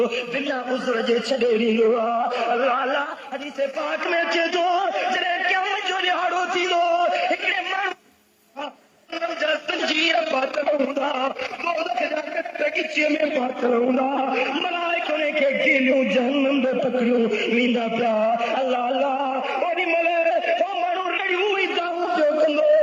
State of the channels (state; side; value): identical; both; correlation 1.00